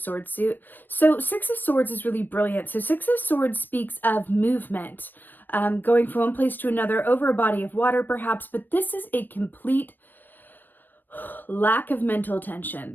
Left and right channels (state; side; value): late; right; 0.092 ms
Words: suit. So Six of Swords is really brilliant. So Six of Swords speaks of movement, going from one place to another over a body of water, perhaps, but this is a complete lack of mental tension.